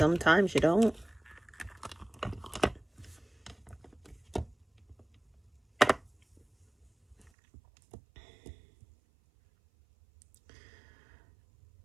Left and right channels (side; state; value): left; drops out; at 7.3 s